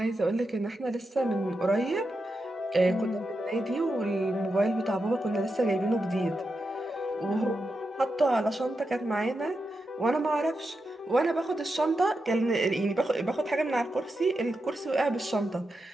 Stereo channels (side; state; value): both; normal; correlation 0.88